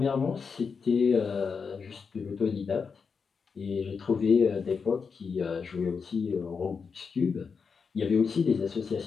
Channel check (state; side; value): quieter; right; 5.6 dB